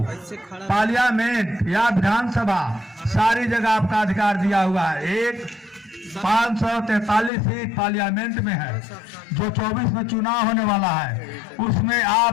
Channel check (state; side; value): drops out; right; at 7.3 s